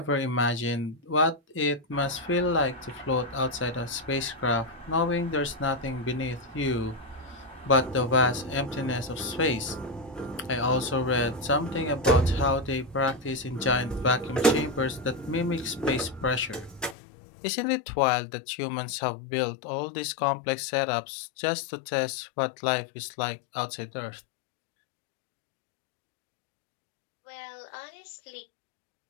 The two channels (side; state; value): right; drops out; at 16.9 s